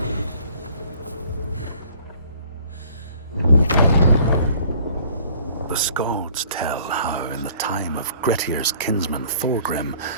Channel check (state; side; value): inverted; both; correlation -0.55